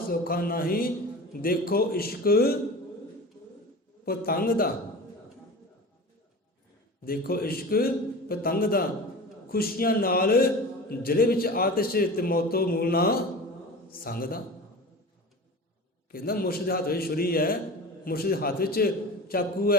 ਨਹੀਂ, ਦੇਖੋ ਇਸ਼ਕ ਪਤੰਗ ਦਾ, ਦੇਖੋ ਇਸ਼ਕ ਪਤੰਗ ਦਾ, ਖੁਸ਼ੀਆਂ ਨਾਲ ਜ਼ਿਲ੍ਹੇ ਵਿੱਚ ਆਤਿਸ਼, ਤੇ ਮੌਤੋਂ ਮੂਲ ਨਾ ਸੰਗ ਦਾ। ਕਹਿੰਦਾ ਮੁਰਸ਼ਿਦ ਦੇ ਹੱਥ ਵਿੱਚ ਛੁਰੀ ਹੈ, ਮੁਰਸ਼ਿਦ ਦੇ ਹੱਥ ਵਿੱਚ ਚਾਕੂ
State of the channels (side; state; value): both; normal; correlation 0.33